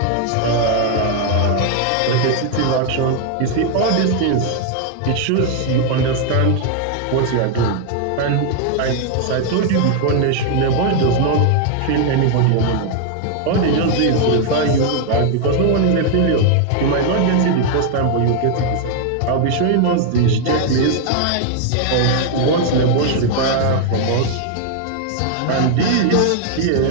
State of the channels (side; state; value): both; different; correlation 0.00